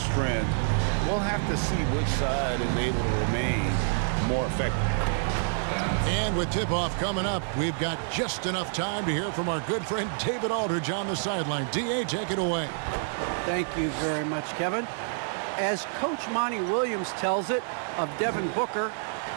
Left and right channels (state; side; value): silent; left; digital silence